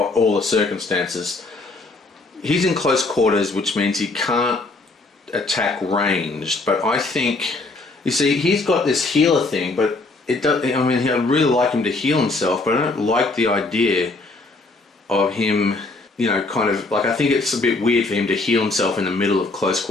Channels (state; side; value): quieter; right; 3.3 dB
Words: the circumstances. He's in close quarters, which means he can't attack ranged, but I think, you see, he's got this healer thing, but it does, I'd really like him to heal himself, but I don't like the idea of him, I think it's a bit weird for him to heal himself in the middle of close